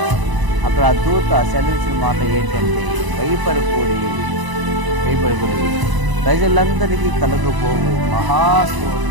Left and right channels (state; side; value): late; left; 1.0 ms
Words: అక్కడ ఆ దూత సెలవిచ్చిన మాట ఏంటంటే, భయపడుకొని ప్రజలందరికీ కలుగుపోవు